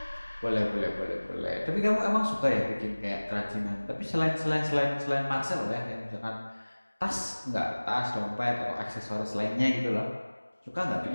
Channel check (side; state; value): both; inverted; correlation -1.00